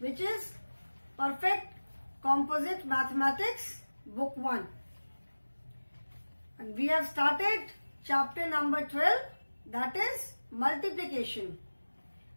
is Perfect Composite Mathematics Book 1. And we have started chapter number 12, that is multiplication.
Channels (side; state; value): both; inverted; correlation -1.00